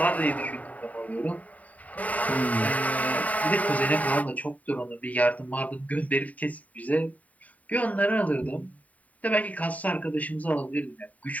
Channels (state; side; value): late; right; 0.071 ms